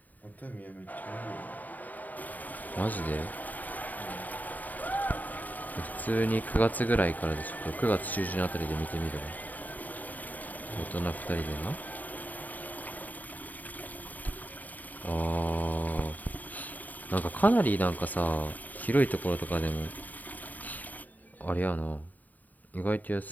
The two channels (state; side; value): late; right; 0.081 ms